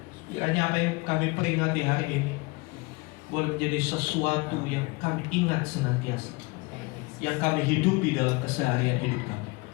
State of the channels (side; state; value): right; quieter; 25.7 dB